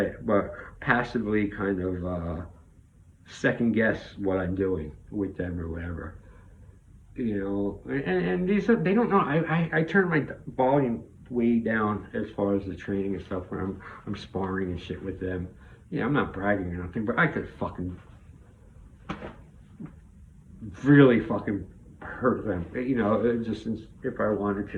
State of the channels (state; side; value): identical; both; correlation 1.00